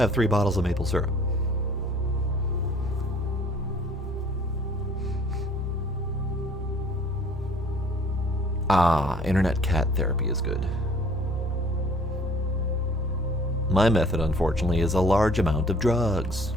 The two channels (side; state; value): both; normal; correlation 0.54